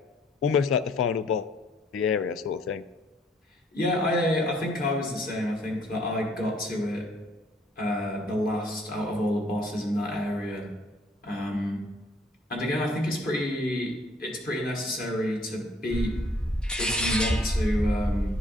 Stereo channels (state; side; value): normal; both; correlation 0.62